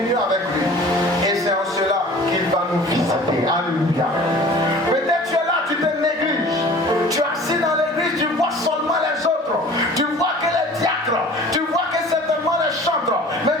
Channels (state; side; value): normal; both; correlation 0.45